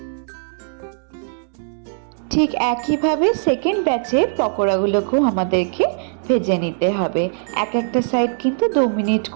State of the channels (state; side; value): silent; left; digital silence